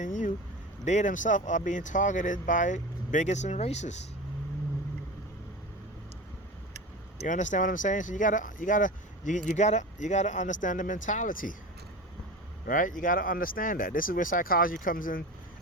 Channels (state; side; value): normal; both; correlation 0.30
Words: you, they themselves are being targeted by bigots and racists. You understand what I'm saying? So you gotta understand the mentality, right? You gotta understand that. This is where psychology comes